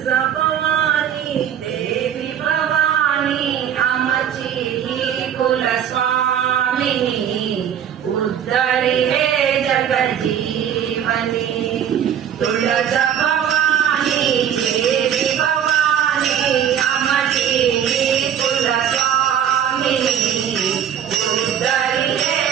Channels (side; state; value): left; quieter; 9.2 dB